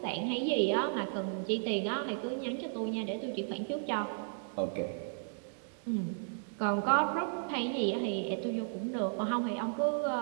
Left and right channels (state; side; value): silent; left; digital silence